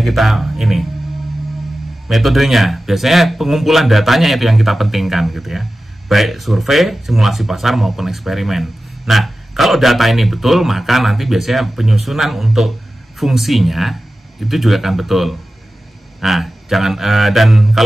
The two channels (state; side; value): normal; both; correlation 0.94